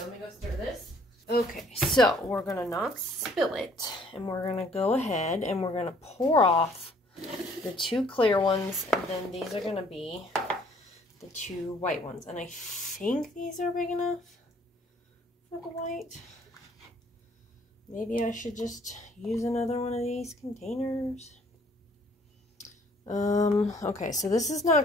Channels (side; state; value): both; normal; correlation 0.60